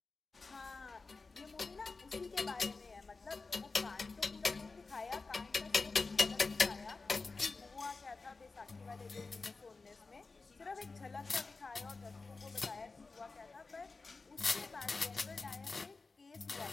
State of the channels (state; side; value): quieter; right; 4.0 dB